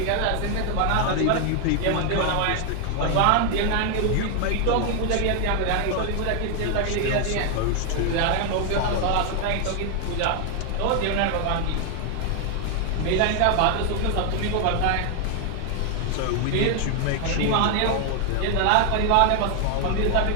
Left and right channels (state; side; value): different; both; correlation 0.00